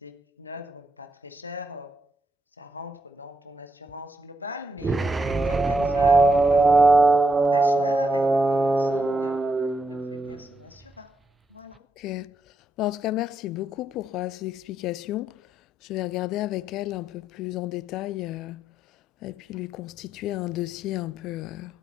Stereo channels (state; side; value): normal; both; correlation 0.80